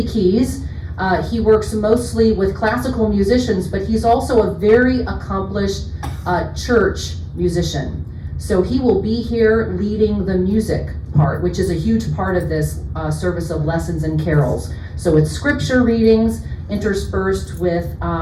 Keys. He works mostly with classical musicians, but he's also a very accomplished church musician. So he will be here leading the music part, which is a huge part of this service of lessons and carols. So it's scripture readings interspersed with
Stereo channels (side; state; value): both; identical; correlation 1.00